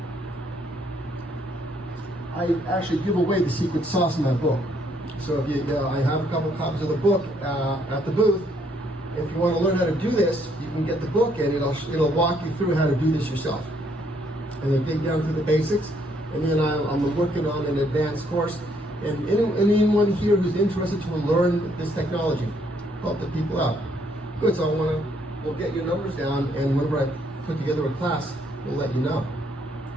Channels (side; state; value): both; normal; correlation 0.69